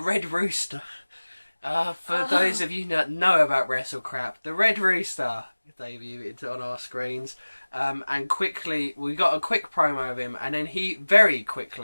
Rooster. For those of you that know about WrestleCrap, the Red Rooster debuted on our screens, and quickly we got a quick promo of him, and then he very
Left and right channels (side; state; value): both; inverted; correlation -1.00